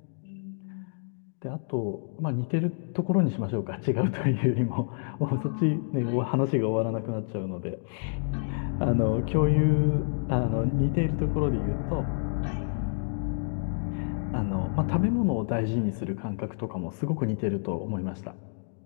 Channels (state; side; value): silent; right; digital silence